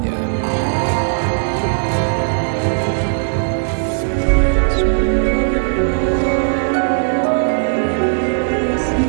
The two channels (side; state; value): left; silent; digital silence